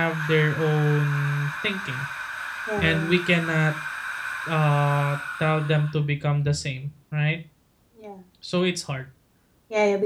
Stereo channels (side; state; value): both; identical; correlation 1.00